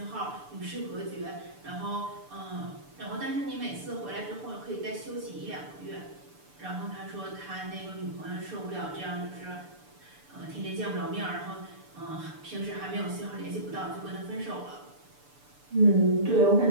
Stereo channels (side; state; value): left; late; 6.8 ms